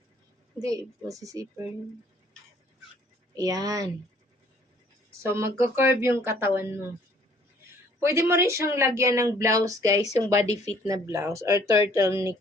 Hindi, masisiper yun. Ayan. So, magka-curve yung katawan mo. Pwede mo rin siyang lagyan ng blouse, guys. Yung body fit na blouse or turtleneck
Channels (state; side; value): normal; both; correlation 0.59